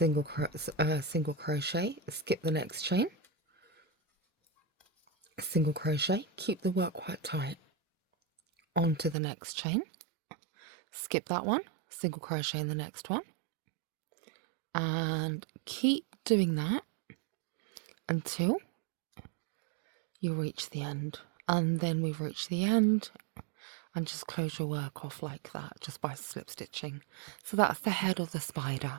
crochet, skip the next chain, single crochet, keep the work quite tight, onto the next chain, skip that one, single crochet in the next one, and keep doing that until you reach the end. And then we've reached the end, and just close your work off like that just by slip stitching. So that's the head of the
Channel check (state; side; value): drops out; left; at 9.2 s